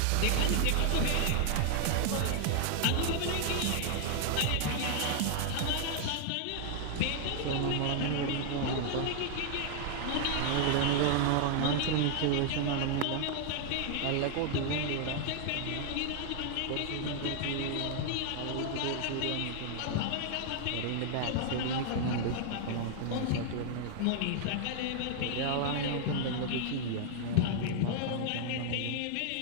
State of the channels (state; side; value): different; both; correlation 0.00